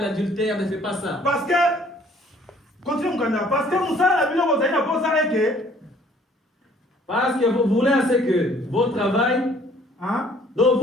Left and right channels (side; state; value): both; normal; correlation 0.58